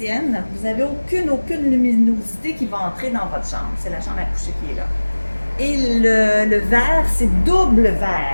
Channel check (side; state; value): both; inverted; correlation -1.00